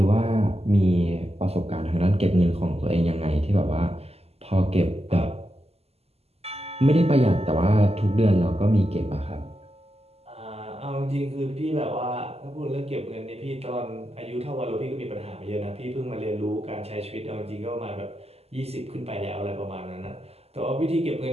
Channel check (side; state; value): left; late; 0.29 ms